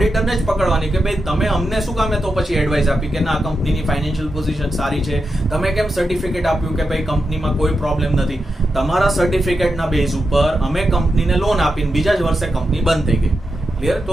જ પકડવાની કે ભાઈ તમે અમને શું કામે તો પછી એડવાઇસ આપી કે ના કંપનીની ફાઇનાન્શિયલ પોઝિશન સારી છે, તમે કેમ સર્ટિફિકેટ આપ્યું કે ભાઈ કંપનીમાં કોઈ પ્રોબ્લેમ નથી? તમારા સર્ટિફિકેટના બેઝ ઉપર અમે કંપનીને લોન આપીને બીજા જ વર્ષે કંપની બંધ થઈ ગઈ. ક્લિયર?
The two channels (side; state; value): both; normal; correlation 0.88